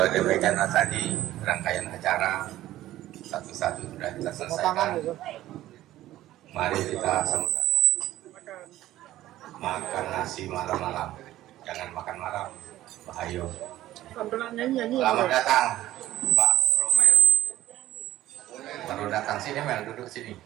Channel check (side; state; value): left; quieter; 14.6 dB